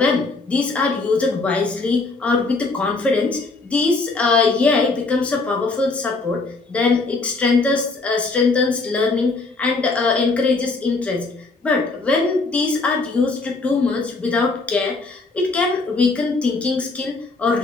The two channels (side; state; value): right; quieter; 3.7 dB